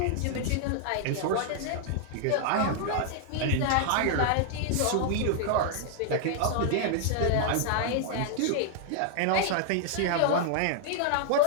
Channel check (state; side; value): different; both; correlation -0.01